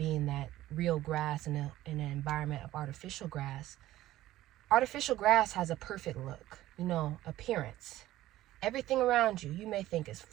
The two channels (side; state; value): left; quieter; 15.1 dB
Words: that real grass in an environment of artificial grass. Artificial grass has a perfect look, appearance. Everything around you, you may think is